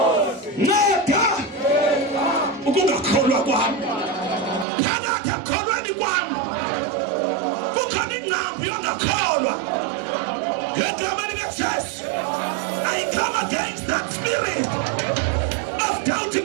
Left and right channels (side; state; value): left; drops out; at 4.7 s